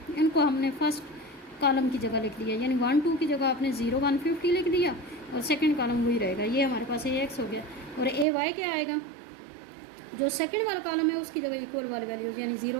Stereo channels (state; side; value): drops out; left; at 8.2 s